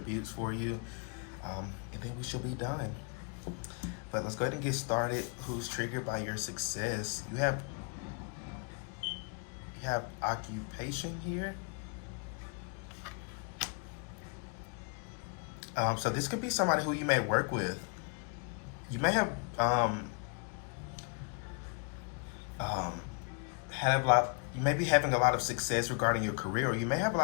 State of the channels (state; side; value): quieter; right; 37.2 dB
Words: for you. And then we should be done. But let's go ahead and get started. Who's triggered by your success? You have occupation here. So this could be somebody who you may work with. You may have you may be having a lot of success regarding your career, or you may have a